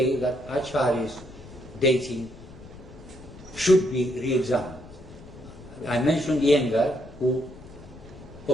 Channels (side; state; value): left; noise; rumble, 18 dB below the sound